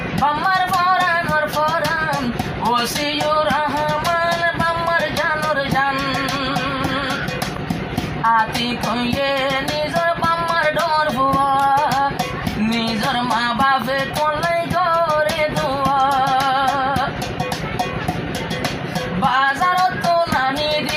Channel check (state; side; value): identical; both; correlation 1.00